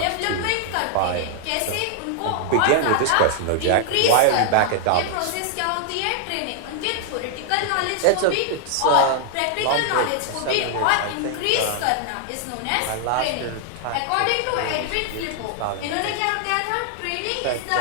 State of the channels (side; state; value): both; different; correlation 0.00